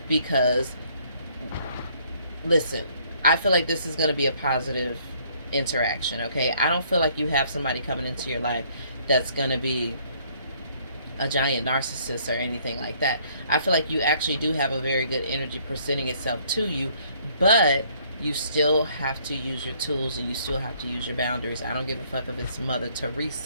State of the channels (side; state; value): both; inverted; correlation -0.63